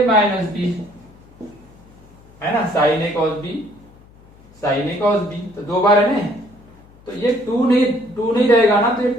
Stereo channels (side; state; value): left; noise; hum, 26 dB below the sound